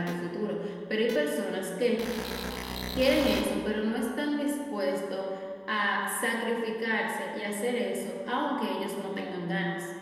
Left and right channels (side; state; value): both; identical; correlation 1.00